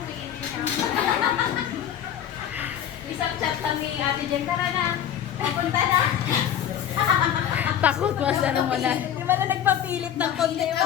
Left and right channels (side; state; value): right; quieter; 9.9 dB